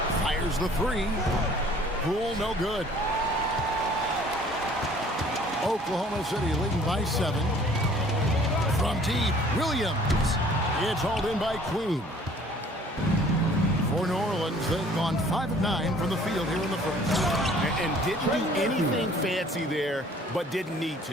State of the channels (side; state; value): both; normal; correlation 0.54